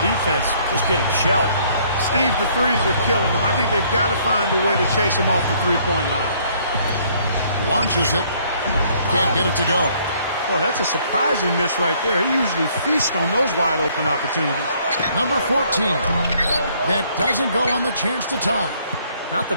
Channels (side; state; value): both; inverted; correlation -0.63